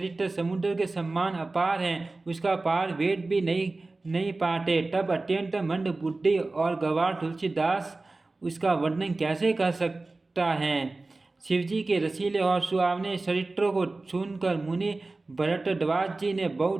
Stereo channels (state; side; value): quieter; left; 3.3 dB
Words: समुद्र के समान अपार है, उसका पार वेद भी नहीं पाते। तब अत्यंत मंद बुद्धि और गवार तुलसीदास उसका वर्णन कैसे कर सकता है। शिवजी के रसीले और सुहावने चरित्रों को सुनकर मुनि भरद्वाज जी ने